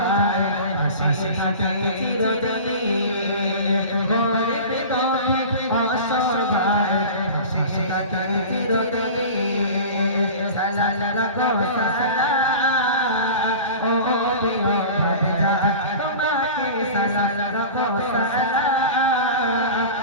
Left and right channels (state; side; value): inverted; both; correlation -0.35